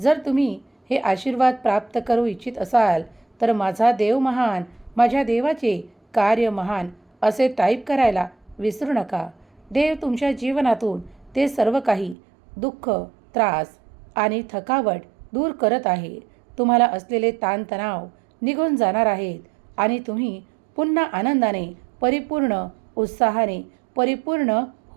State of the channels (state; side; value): drops out; left; at 12.2 s